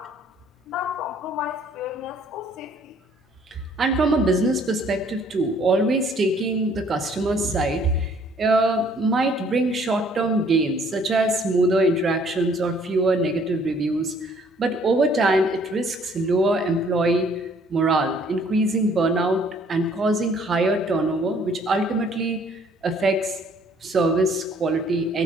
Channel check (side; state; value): both; normal; correlation 0.61